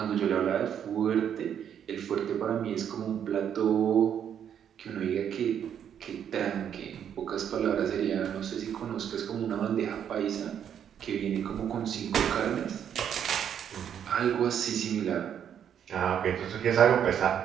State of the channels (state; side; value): quieter; left; 8.9 dB